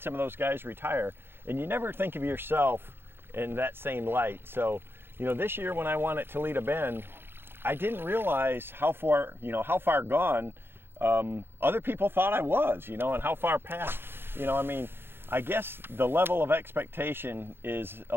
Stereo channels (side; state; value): left; late; 0.11 ms